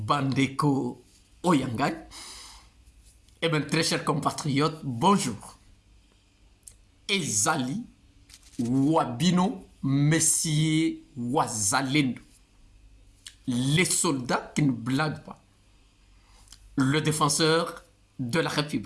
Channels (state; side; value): identical; both; correlation 1.00